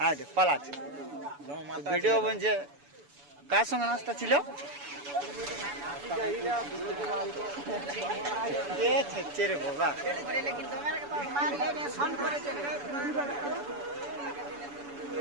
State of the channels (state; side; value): late; left; 7.0 ms